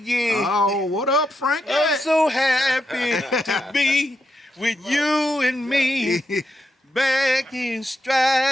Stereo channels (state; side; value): normal; both; correlation 0.83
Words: Oh, what up, Frank? I'm so happy to be with you and me. Back in